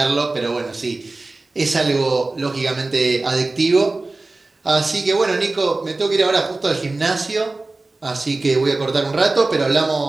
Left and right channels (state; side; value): quieter; left; 3.2 dB